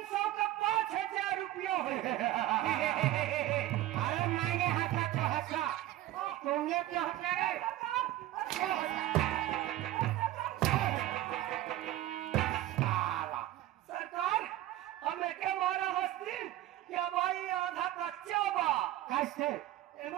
का 5000 रुपया हो अरे मैंने हंसा तो हंसा, तुमने क्यों हंसा रे? साला। सरकार हमें क्या मारा हस्ती क्या भाई आधा कच्चा बा कैसे?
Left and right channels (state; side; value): quieter; left; 14.6 dB